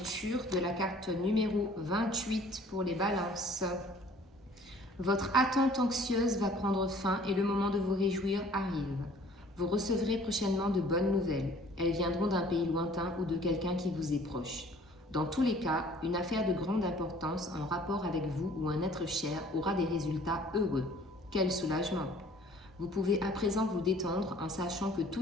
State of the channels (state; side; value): normal; both; correlation 0.53